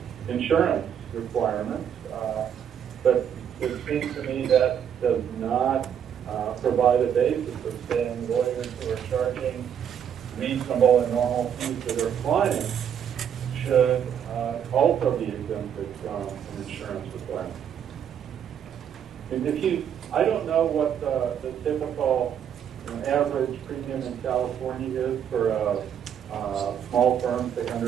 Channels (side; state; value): left; quieter; 8.8 dB